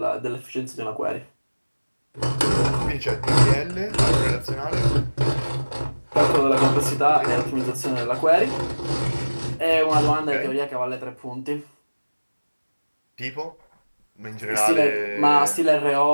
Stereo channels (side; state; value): both; inverted; correlation -1.00